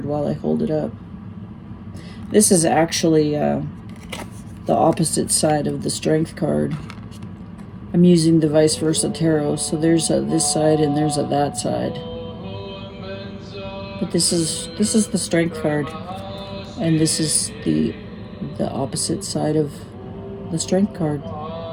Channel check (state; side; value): identical; both; correlation 1.00